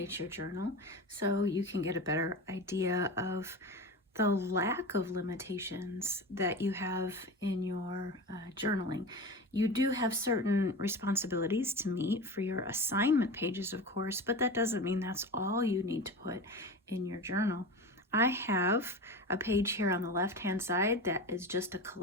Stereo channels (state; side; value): normal; both; correlation 0.28